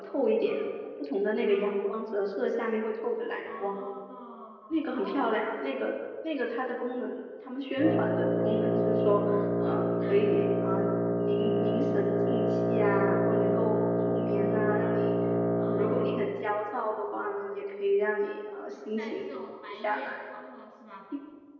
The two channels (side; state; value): both; identical; correlation 1.00